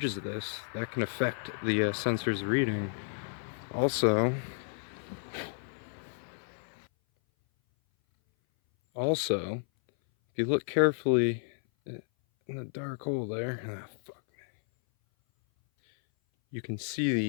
this, that can affect the sensor's reading. Also, if you look carefully in the dark hole there, you can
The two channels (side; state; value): right; silent; 57 dB below the other